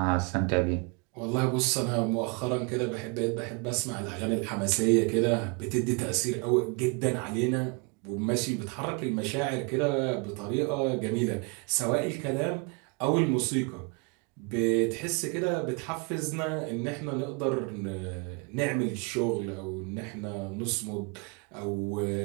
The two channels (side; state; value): left; quieter; 32.0 dB